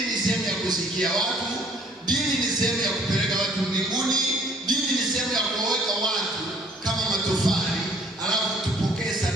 ni sehemu ya kusikia watu, dini ni sehemu ya kupeleka watu mbinguni, dini ni sehemu ya kuweka watu kama matofali, alafu tupokee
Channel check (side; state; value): both; normal; correlation 0.58